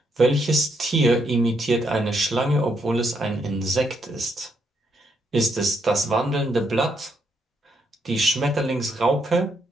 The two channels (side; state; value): both; normal; correlation 0.77